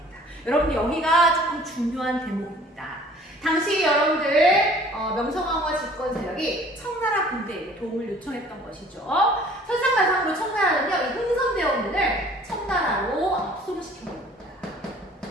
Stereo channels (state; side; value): normal; both; correlation 0.52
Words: 여러분들 여기가 조금 중요한 대목입니다. 당시 여러분들 명성황후와 집권 세력이 청나라 군대에게 도움을 요청했던 것이죠. 설상가상으로 청나라는요, 이 흥선대원군을 청나라로 압송을 시켜버립니다.